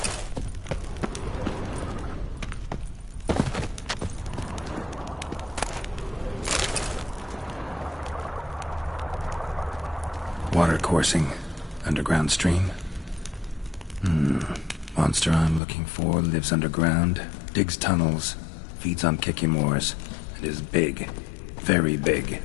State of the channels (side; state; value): right; drops out; at 15.6 s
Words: Water coursing. Underground stream. Monster I'm looking for lives underground, digs tunnels, feeds on Kikimors, and is big. Very big.